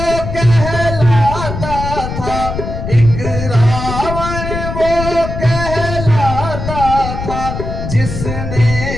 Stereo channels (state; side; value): noise; left; rumble, 6 dB below the sound